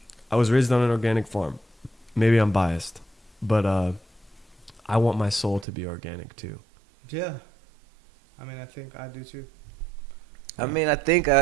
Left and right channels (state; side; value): drops out; left; at 5.7 s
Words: I was raised on an organic farm. Maybe I'm biased, but I want my soul to be organic too. Yeah. I mean, I think I do too. I mean, I think